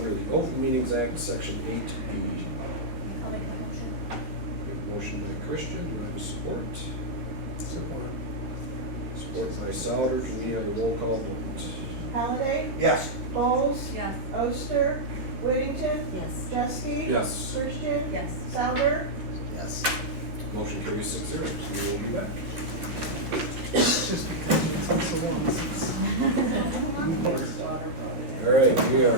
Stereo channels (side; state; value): left; late; 13 ms